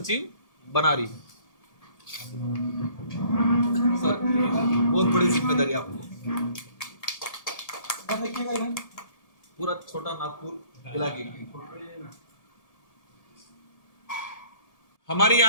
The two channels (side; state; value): right; late; 1.8 ms